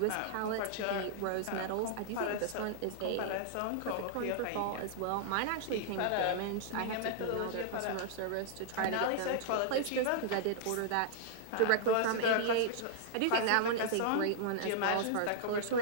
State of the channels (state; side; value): different; both; correlation -0.01